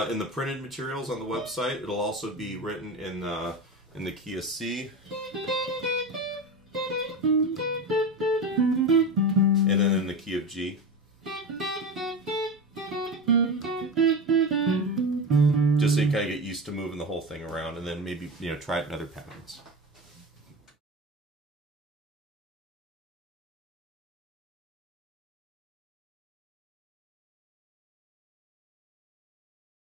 In the printed materials on the website, it'll also be written in the key of C. And then in the key of G. Just so you kind of get used to moving the whole thing around, and then maybe, you know, try it in other patterns.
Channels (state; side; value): normal; both; correlation 0.24